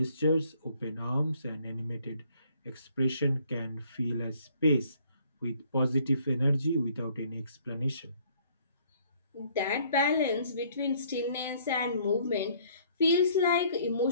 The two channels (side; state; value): both; inverted; correlation -0.61